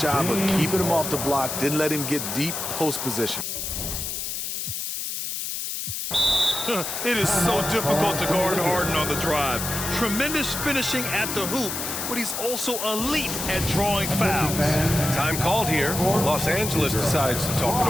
of keeping him off the block, didn't let him get deep post position. It is so difficult to guard Harden on the drive. Tremendous finishing at the hoop, but he's also elite at drawing fouls. Time called here. Los Angeles decides to talk it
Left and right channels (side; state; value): left; noise; hiss, 4 dB below the sound